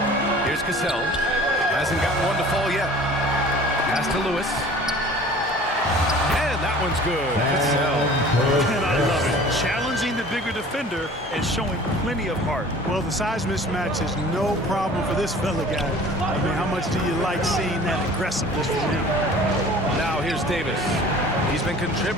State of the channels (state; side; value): normal; both; correlation 0.46